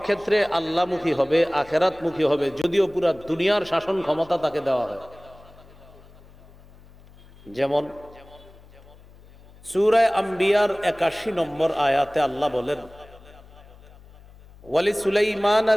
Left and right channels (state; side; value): noise; left; hum, 23 dB below the sound